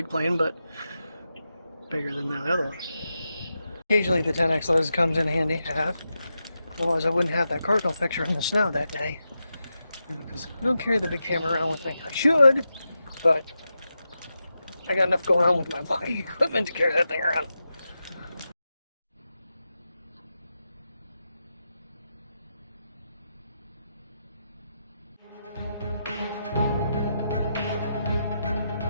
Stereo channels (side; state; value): both; inverted; correlation -0.88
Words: plane, but bigger than the other one. Occasionally the 10X lens comes in handy to have. Otherwise I wouldn't have that cardinal picture in the snow that day. Because I don't carry the big camera around with me. I should, but I got enough going on with my body equipment to carry that thing around.